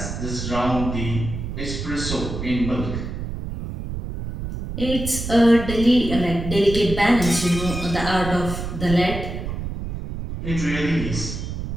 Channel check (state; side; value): noise; right; rumble, 6 dB below the sound